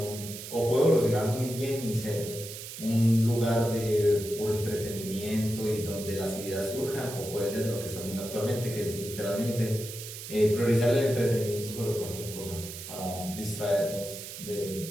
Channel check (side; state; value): right; noise; hiss, 10 dB below the sound